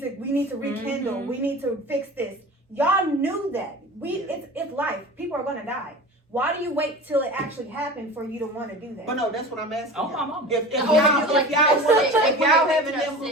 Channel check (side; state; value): both; normal; correlation 0.35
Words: to rekindle. Mhm. We need to fix this." Y'all knew that. Yeah. It's life. People are gonna die. Why do you wait till it actually happened for you to want to do that? But no, that's what I'm asking. Oh, y'all. my mama. If Oh, y'all, you like if y'all, that's want, it. if y'all having That's them